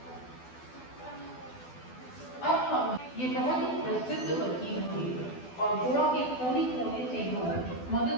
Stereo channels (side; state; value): right; late; 12 ms